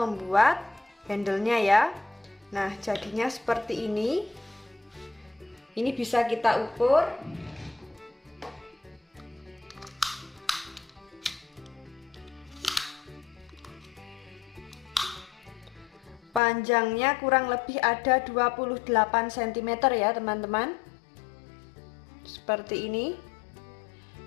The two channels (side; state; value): right; drops out; at 16.4 s